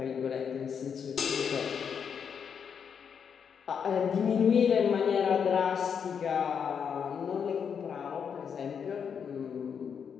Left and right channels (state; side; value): quieter; right; 7.1 dB